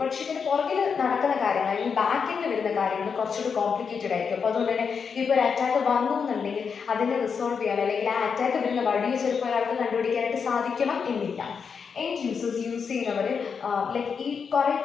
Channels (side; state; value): right; quieter; 6.1 dB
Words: പക്ഷേ ഇതിന് പുറകിൽ നടക്കുന്ന കാര്യങ്ങൾ അല്ലെങ്കിൽ ബാക്ക് എൻഡിൽ വരുന്ന കാര്യങ്ങൾ കുറച്ചുകൂടി കോംപ്ലിക്കേറ്റഡ് ആയിരിക്കും. അപ്പോൾ അതുകൊണ്ട് തന്നെ ഇപ്പോൾ ഒരു അറ്റാക്ക് വന്നു എന്നുണ്ടെങ്കിൽ അതിനെ റിസോൾവ് ചെയ്യാൻ അല്ലെങ്കിൽ ആ അറ്റാക്ക് വരുന്ന വഴിയെ ചിലപ്പോൾ ഒരാൾക്ക് കണ്ടുപിടിക്കാനായിട്ട് സാധിക്കണം എന്നില്ല. എൻഡ് യൂസേഴ്സ് യൂസ് ചെയ്യുന്നവർ ഈ കുറേ